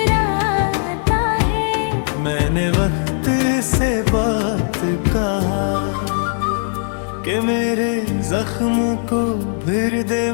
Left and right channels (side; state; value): right; silent; 67 dB below the other